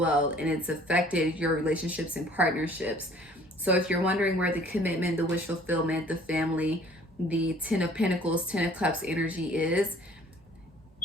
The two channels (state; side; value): normal; both; correlation 0.54